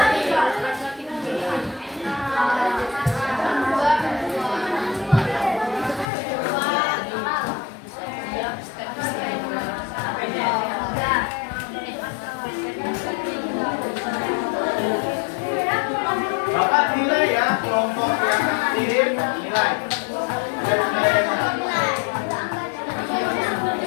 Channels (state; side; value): drops out; right; at 6.1 s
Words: Bapak nilai ya kelompok yang aktif, nilai.